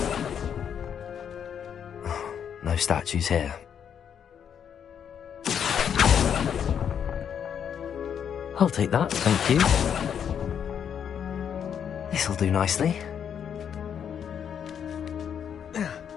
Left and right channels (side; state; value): right; quieter; 8.2 dB